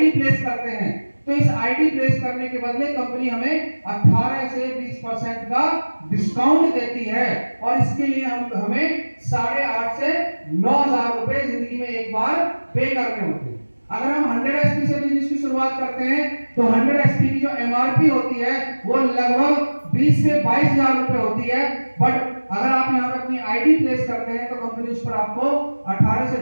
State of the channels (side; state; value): both; inverted; correlation -1.00